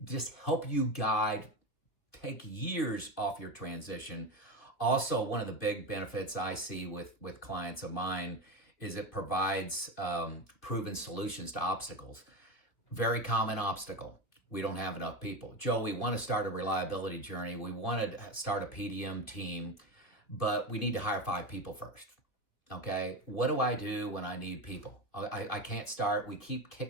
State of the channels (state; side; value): late; right; 2.7 ms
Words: Just help you guide, take years off your transition Also, one of the big benefits I see with clients of mine is it provides proven solutions to obstacles. Very common obstacle. We don't have enough people. Joe, we want to start a reliability journey. We want to start a PDM team, but we need to hire 5 people first. Okay. What do I do when I need people? I can't start. We keep